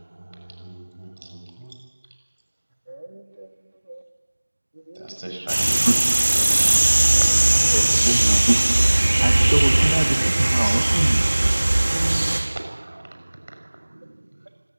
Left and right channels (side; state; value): both; inverted; correlation -1.00